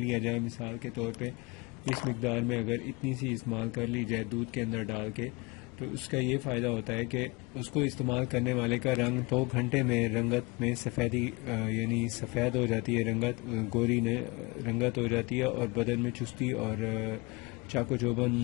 جائے، مثال کے طور پہ اس مقدار میں اگر اتنی سی استعمال کر لی جائے دودھ کے اندر ڈال کے، تو اس کا یہ فائدہ ہوتا ہے کہ اس کو استعمال کرنے والے کا رنگ 2 گھنٹے میں رنگت میں سفیدی سفید ہو جاتی ہے، گوری رنگت ہو جاتی ہے، اور بدن میں چستی اور چاقو چوبند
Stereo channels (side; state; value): right; quieter; 25.9 dB